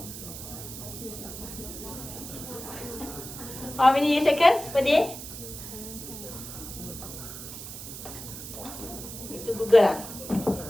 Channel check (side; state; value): right; noise; hiss, 10 dB below the sound